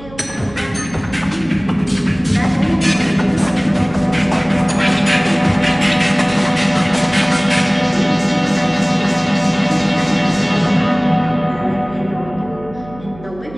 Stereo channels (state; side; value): noise; right; hum, 19 dB below the sound